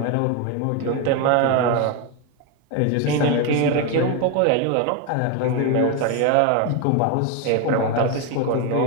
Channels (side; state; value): both; different; correlation 0.02